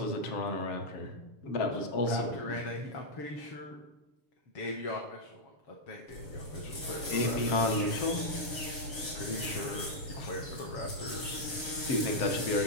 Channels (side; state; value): right; late; 7.0 ms